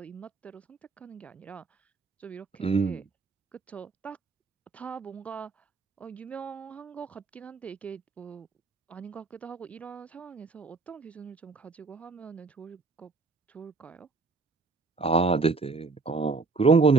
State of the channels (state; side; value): quieter; left; 4.1 dB